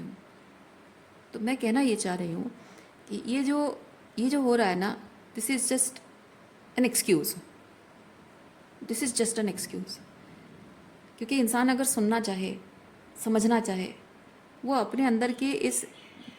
तो मैं कहना ये चाह रही हूँ कि ये जो हो रहा है ना, this is just an excuse, this is just an excuse. क्योंकि इंसान अगर सुनना चाहे, समझना चाहे, वो अपने अंदर के इस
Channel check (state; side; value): identical; both; correlation 1.00